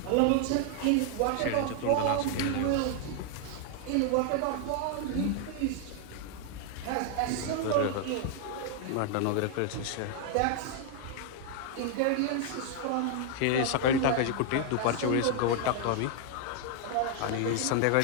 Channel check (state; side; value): different; both; correlation 0.00